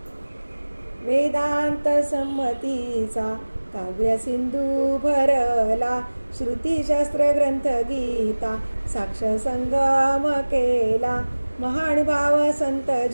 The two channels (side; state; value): both; inverted; correlation -1.00